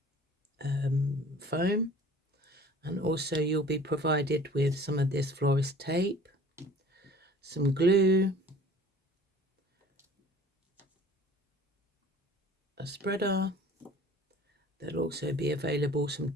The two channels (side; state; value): both; normal; correlation 0.48